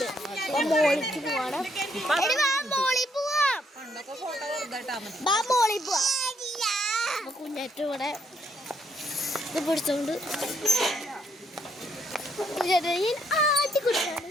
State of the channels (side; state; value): both; normal; correlation 0.72